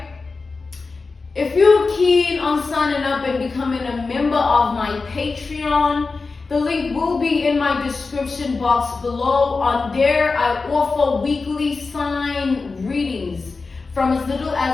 If you're keen on signing up and becoming a member of my Patreon, the link will be in my description box below. On there, I offer weekly sign readings from as little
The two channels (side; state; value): right; quieter; 4.1 dB